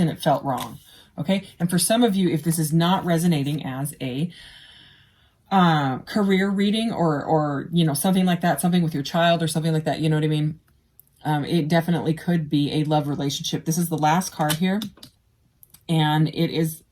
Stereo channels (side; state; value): both; identical; correlation 1.00